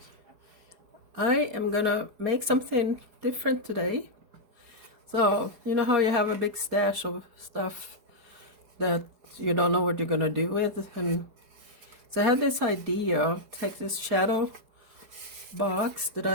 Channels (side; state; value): left; late; 4.8 ms